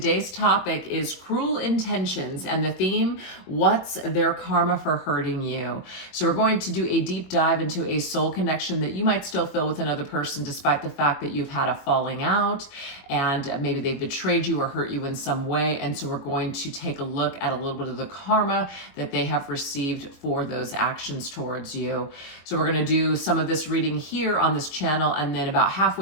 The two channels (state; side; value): late; right; 21 ms